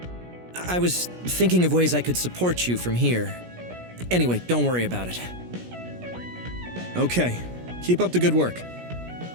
I was thinking of ways I could support you from here. Anyway, don't worry about it. Okay. Keep up the good work.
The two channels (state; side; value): late; left; 17 ms